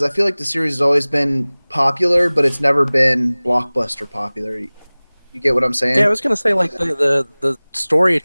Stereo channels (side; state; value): both; inverted; correlation -1.00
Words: I feel like the series has always been popular, but it's never been blockbuster popular. You get what I'm saying? Yeah, I was gonna say like the story